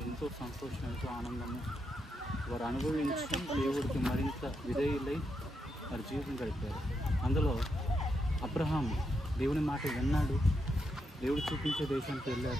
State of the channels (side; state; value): both; normal; correlation 0.82